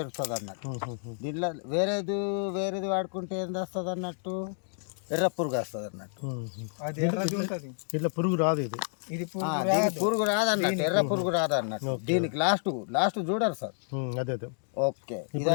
అన్నట్టు. దీంట్లో వేరేది వాడుకుంటే ఏంది వస్తుంది అన్నట్టు, ఎర్ర పురుగు వస్తుంది అన్నట్టు. ఇట్లా పురుగు రాదు, ఇది పురుగు రాదు అన్నట్టు, ఎర్ర పురుగు రాదు అన్నట్టు. దీనికి లాస్ట్ చూడరు సార్. అదే ఓకే,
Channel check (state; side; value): silent; right; 58 dB below the other